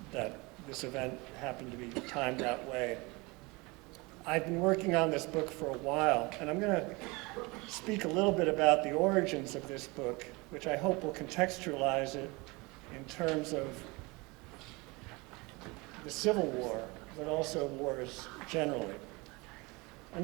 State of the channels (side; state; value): left; quieter; 25.5 dB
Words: this event happened to be timed that way. I've been working on this book for a while, and I'm going to speak a little bit about the origins of this book, which I hope will contextualize it in terms of the Civil War, but also wars generally.